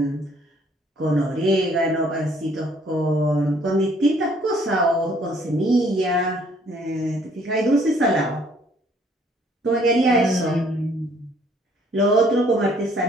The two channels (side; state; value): both; normal; correlation 0.62